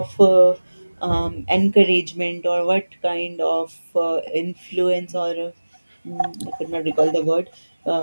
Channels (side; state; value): both; inverted; correlation -1.00